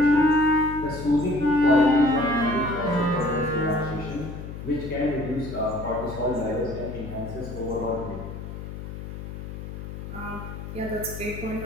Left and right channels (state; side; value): noise; left; hum, 9 dB below the sound